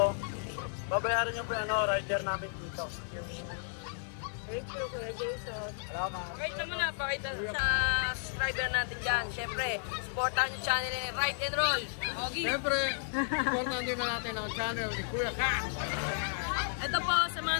babayaran nyo po yung rider namin dito. Thank you, Kuya Jason. Salamat. Pakita mo na, pakita sa subscriber natin dyan. Siyempre, supportahan yung channel ni Ride and Roll. Okay. Siyempre, supportan din na natin ang channel ni Kuya Ka. Ito po, sa mga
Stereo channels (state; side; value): silent; right; 56 dB below the other